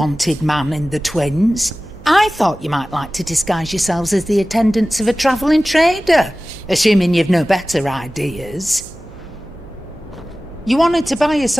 man in the Twins? I thought you might like to disguise yourselves as the attendants of a travelling trader, assuming you've no better ideas. You wanted to buy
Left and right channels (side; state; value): right; noise; hum, 20 dB below the sound